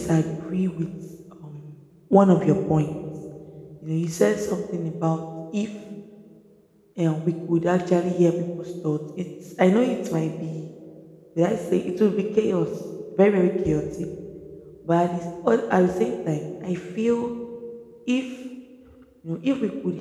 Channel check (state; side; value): identical; both; correlation 1.00